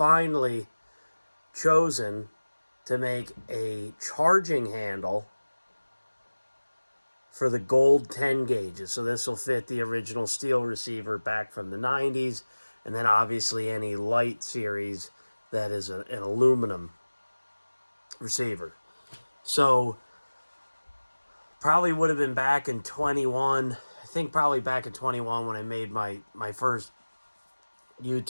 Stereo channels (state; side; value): inverted; both; correlation -1.00